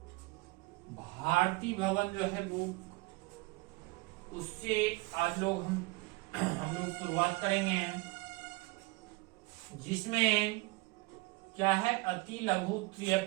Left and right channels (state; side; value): quieter; left; 23.5 dB